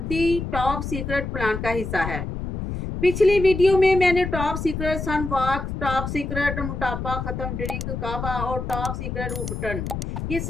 टॉप सीक्रेट प्लान का हिस्सा है। पिछली वीडियो में मैंने टॉप सीक्रेट सनवॉक, टॉप सीक्रेट मोटापा खत्म ड्रिंक काबा और टॉप सीक्रेट उबटन ये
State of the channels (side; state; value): left; noise; rumble, 5 dB below the sound